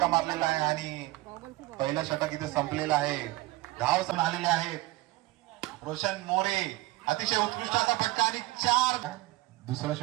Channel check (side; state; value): left; quieter; 19.4 dB